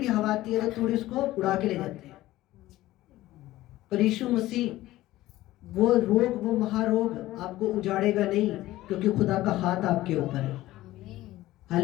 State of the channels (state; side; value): quieter; right; 16.2 dB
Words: हवा आती है तो तूड़ी उसको उड़ा के ले जाती है। पर यीशु मसीह वो रोग, वो महारोग आपको उजाड़ेगा नहीं, क्योंकि खुदा का हाथ आपके ऊपर है।